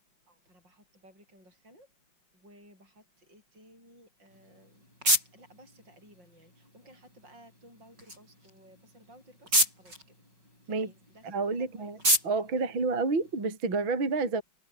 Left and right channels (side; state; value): left; late; 5.4 ms